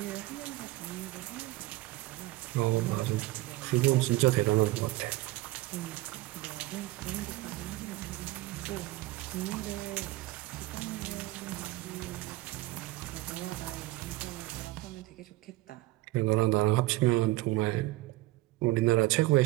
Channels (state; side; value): quieter; left; 18.7 dB